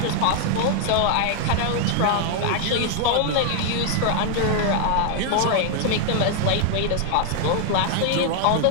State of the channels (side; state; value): both; different; correlation 0.00